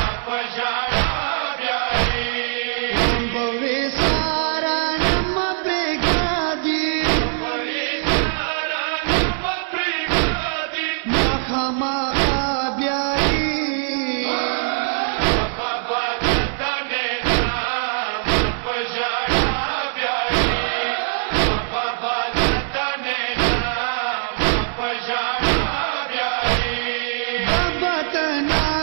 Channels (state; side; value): silent; left; digital silence